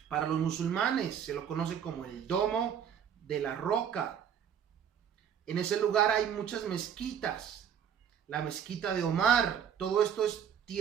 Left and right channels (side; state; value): left; quieter; 8.4 dB